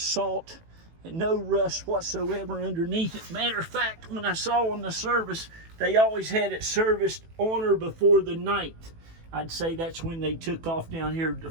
and no rust whatsoever underneath it. Matter of fact, when I saw on the service, they always had it serviced on or before the 9th. I'd say that's when they took off down here to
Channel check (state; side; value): late; left; 18 ms